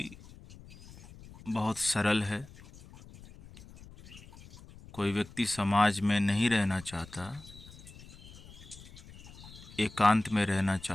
बहुत सरल है। कोई व्यक्ति समाज में नहीं रहना चाहता, एकांत में रहना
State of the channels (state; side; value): noise; left; rumble, 19 dB below the sound